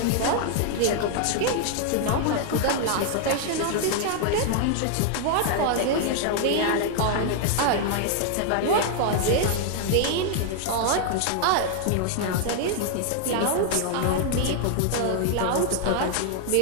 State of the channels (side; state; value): both; different; correlation 0.00